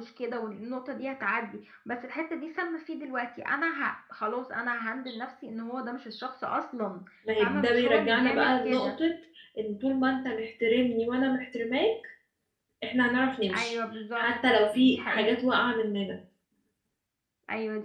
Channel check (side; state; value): both; identical; correlation 1.00